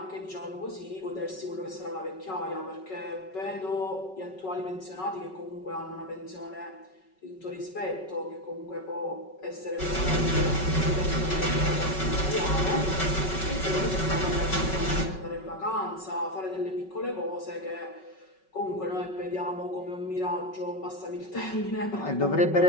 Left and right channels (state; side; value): late; right; 5.4 ms